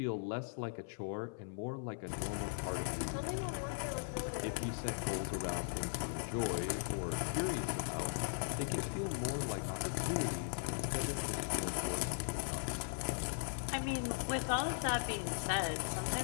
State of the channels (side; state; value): right; silent; 52 dB below the other